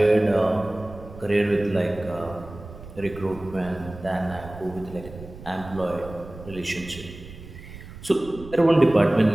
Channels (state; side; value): noise; right; rumble, 16 dB below the sound